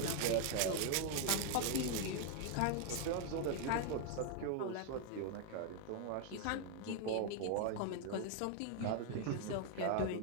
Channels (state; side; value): different; both; correlation 0.00